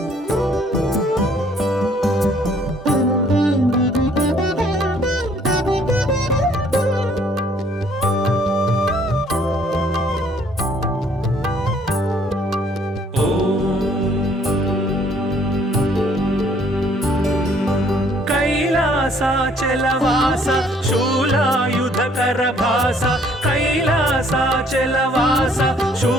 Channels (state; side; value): normal; both; correlation 0.62